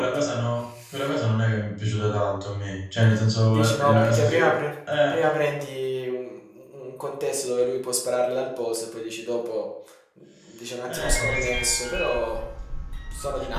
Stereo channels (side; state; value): both; identical; correlation 1.00